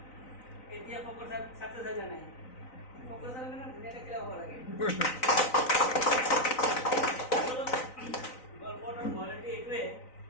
এতিয়া শংকৰ চাক চাকচেছ হৈ নাই শংকৰ চাক ধুনীয়াকে কিয় হ'ব লাগে গল্পটোৰ মৰমটো এইটোৱে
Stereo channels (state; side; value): late; right; 3.9 ms